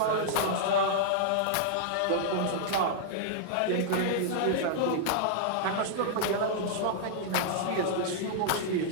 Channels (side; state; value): both; different; correlation -0.01